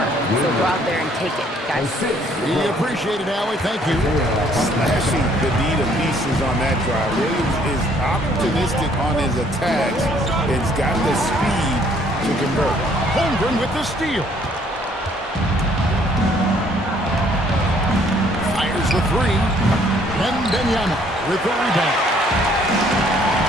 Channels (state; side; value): normal; both; correlation 0.63